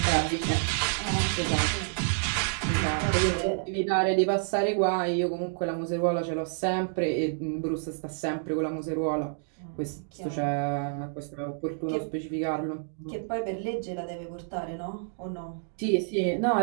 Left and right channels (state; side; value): silent; left; digital silence